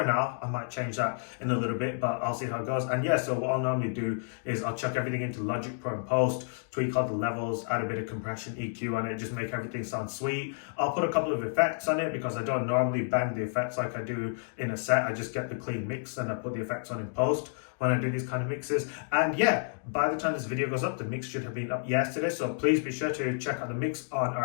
now, I might change that in a little bit, but I'll see how it goes. And yeah, so what I'll normally do is I'll chuck everything into Logic Pro and Post, tweak all the levels, add a bit of compression, EQ on it, just make everything sound sweet. I'll put a couple of effects on it because I don't normally bang the effects like I do in a set. I just get the clean mix and I put the effects on in post when I do these kind of mixes. And yeah, by the time this video goes up, the mix should have been up yesterday. So please be sure to check out the mix on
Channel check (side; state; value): right; silent; digital silence